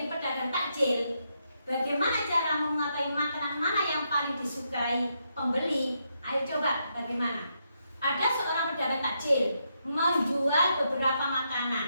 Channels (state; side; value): inverted; both; correlation -0.80